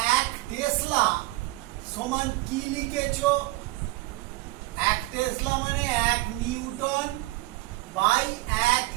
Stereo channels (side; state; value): left; quieter; 20.2 dB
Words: এক টেসলা সমান কি লিখেছো? এক টেসলা মানে 1 নিউটন বাই 1